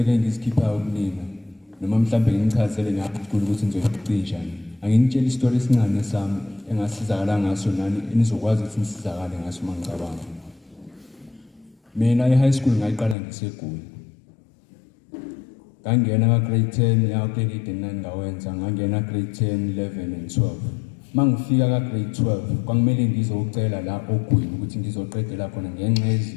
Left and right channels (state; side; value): drops out; right; at 13.2 s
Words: engizikhiphayo kunina, noma mhlambe ngichazele ngaphucula ukuthi nizoyicisha. Angitshela istory esincane sami engasizakala ngaso nani enizokwazi ukuthi nisizakale ngaso mangicabanga. Mina e-high school ngayiqala ngiseGoli. Ngangena ka grade 10 ya grade 8 and 9 ngawenza, ngangena grade 10, 11 and 12. Mangifika ka grade 12 kwangimele ngizocela la ogwini ukuthi ngizoqedela khona ngenxa